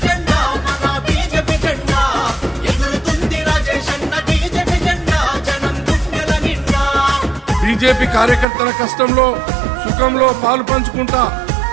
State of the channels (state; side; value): drops out; left; at 8.5 s